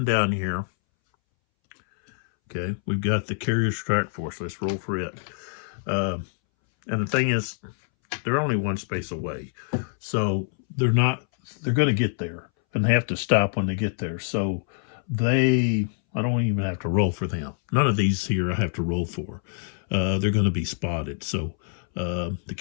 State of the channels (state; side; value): silent; right; 61 dB below the other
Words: down here, okay, we've got the carrier strike force. Let's roll for it. And the thing is, they're only 1 space away. So they're going to get there, and they have to stop when they get there. So I don't even have to roll for them. None of these here I have to roll for. They're going to be spotted. So the